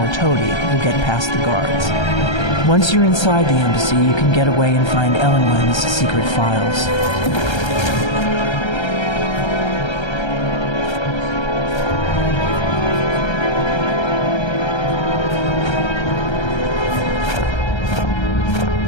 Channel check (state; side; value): late; right; 1.3 ms